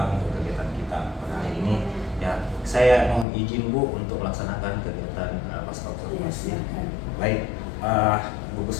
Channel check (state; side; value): drops out; right; at 3.2 s